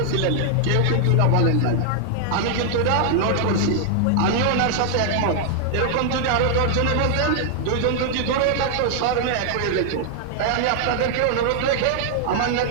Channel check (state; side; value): different; both; correlation 0.00